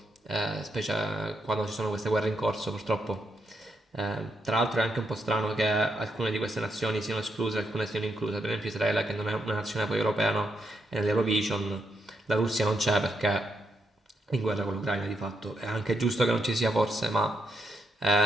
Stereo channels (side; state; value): both; normal; correlation 0.80